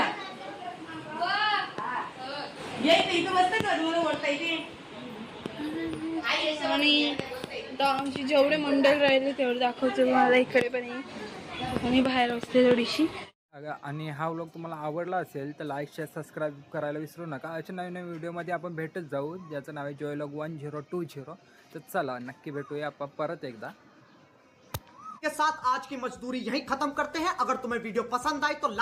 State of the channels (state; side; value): identical; both; correlation 1.00